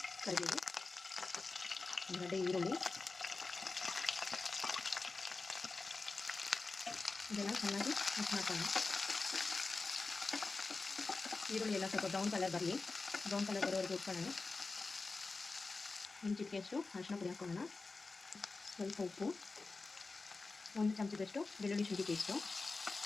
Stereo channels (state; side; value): quieter; right; 3.8 dB